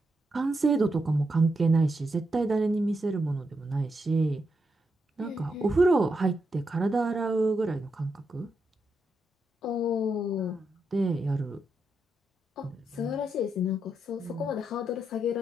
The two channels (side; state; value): both; normal; correlation 0.83